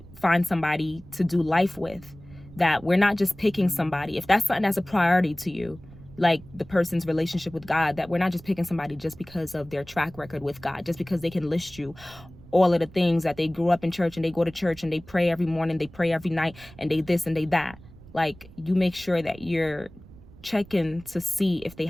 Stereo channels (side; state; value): right; noise; rumble, 21 dB below the sound